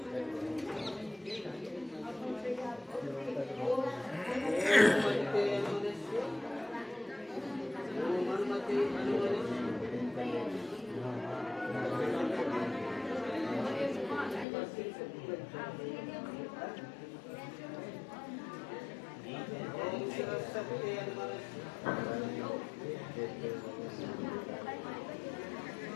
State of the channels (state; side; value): drops out; right; at 14.5 s